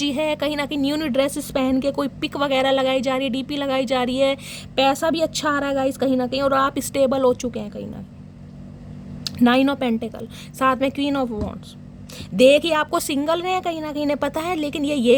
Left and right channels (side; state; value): both; identical; correlation 1.00